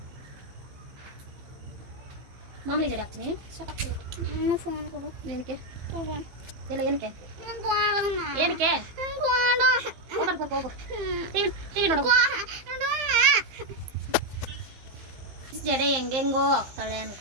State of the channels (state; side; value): late; left; 15 ms